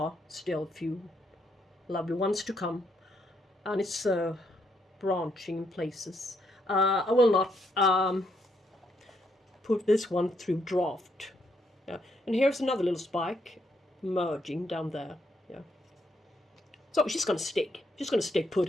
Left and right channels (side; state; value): both; normal; correlation 0.75